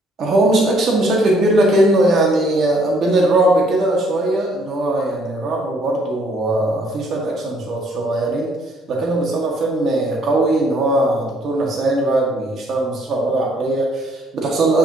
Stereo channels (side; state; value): both; normal; correlation 0.65